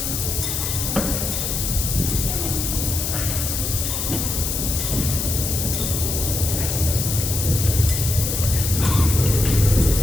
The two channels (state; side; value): noise; left; hiss, 2 dB below the sound